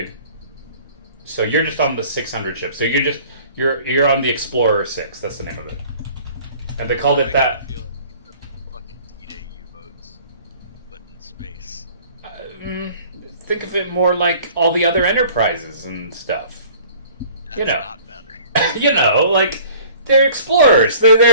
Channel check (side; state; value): both; inverted; correlation -0.50